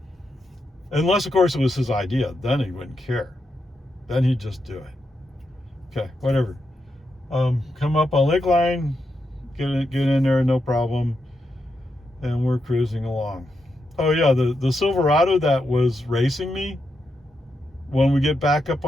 Unless, of course, it was his idea. Then he wouldn't care. Then he'd just do it. Okay, whatever. Come up on Lakeline, get in there, no problem. And we're cruising along. Oh yeah, the Silverado that was racing me, when we get back up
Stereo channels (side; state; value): both; normal; correlation 0.84